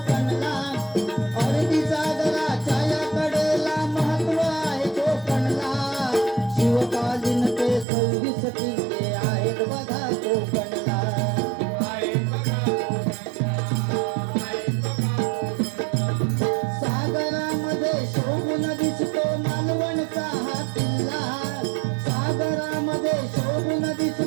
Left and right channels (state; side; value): drops out; left; at 7.9 s